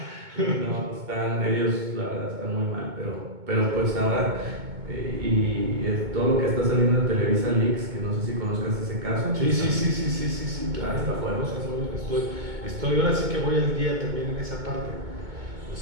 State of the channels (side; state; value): left; late; 2.2 ms